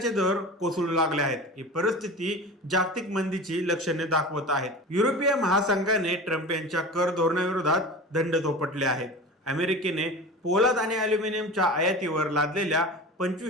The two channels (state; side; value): normal; both; correlation 0.33